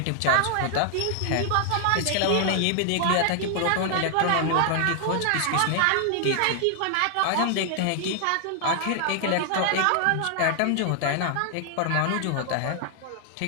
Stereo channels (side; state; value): both; different; correlation 0.00